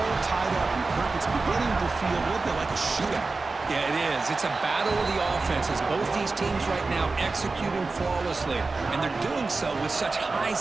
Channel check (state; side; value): quieter; left; 3.8 dB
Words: tied up, and Kirk, it's beginning to feel a little bit like a shootout. Yeah, it is. It's a battle of the offenses. Both these teams right now executing flawlessly, and they're doing so with such high